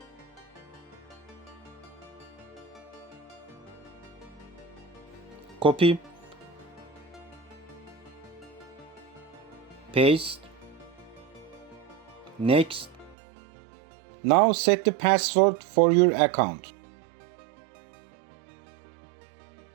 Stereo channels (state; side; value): drops out; left; at 13.2 s